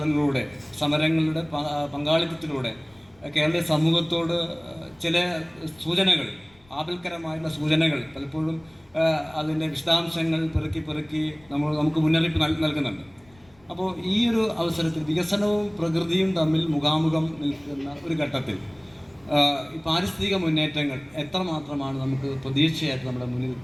സമരങ്ങളുടെ പങ്കാളിത്തത്തിലൂടെ കേരളീയ സമൂഹത്തോട് ചില സൂചനകൾ, ആപൽക്കരമായുള്ള സൂചനകൾ പലപ്പോഴും അതിൻ്റെ വിശദാംശങ്ങൾ പെറുക്കി നമുക്ക് മുന്നറിയിപ്പ് നൽകുന്നുണ്ട്. അപ്പോൾ ഈ ഒരു അവസരത്തിൽ വികസനവും പ്രകൃതിയും തമ്മിൽ മുഖാമുഖം നിൽക്കുന്ന ഒരു ഘട്ടത്തിൽ ഈ പാരിസ്ഥിതിക മുന്നേറ്റങ്ങൾ എത്രമാത്രമാണ് നമുക്ക് പ്രതീക്ഷയായിട്ട് നമ്മുടെ മുന്നിൽ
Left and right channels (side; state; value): left; noise; rumble, 30 dB below the sound